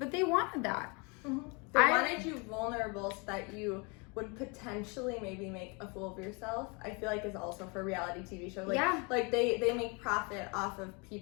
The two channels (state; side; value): quieter; right; 31.2 dB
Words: they wanted that. They wanted you vulnerable so that you would potentially maybe make a fool of yourself. I feel like is also for reality TV shows. Like, like they make profit off of